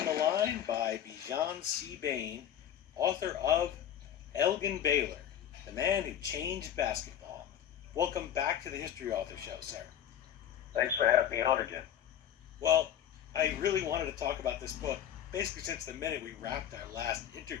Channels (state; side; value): quieter; right; 9.9 dB